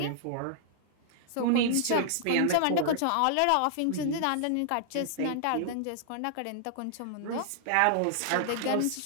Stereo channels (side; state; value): both; different; correlation -0.01